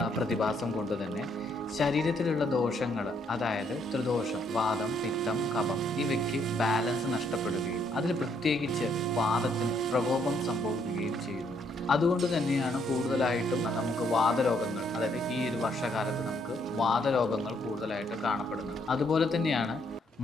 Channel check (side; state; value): both; normal; correlation 0.71